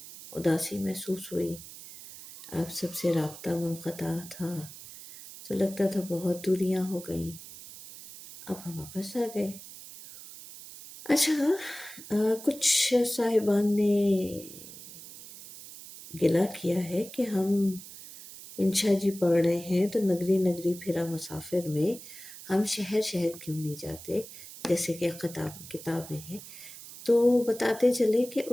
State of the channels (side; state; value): right; noise; hiss, 15 dB below the sound